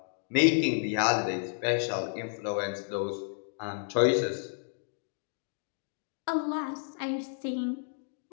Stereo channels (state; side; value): silent; right; digital silence